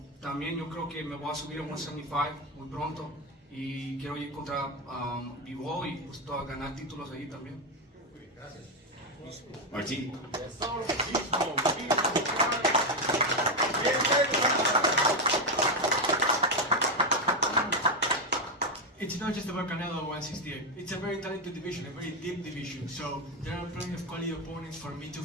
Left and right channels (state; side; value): normal; both; correlation 0.07